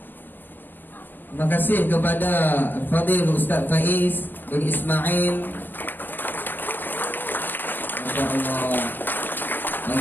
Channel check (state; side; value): late; right; 0.092 ms